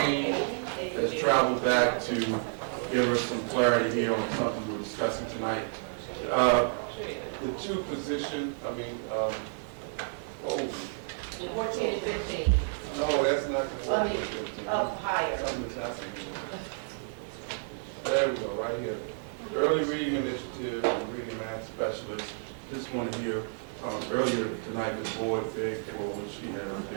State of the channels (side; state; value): left; silent; 57 dB below the other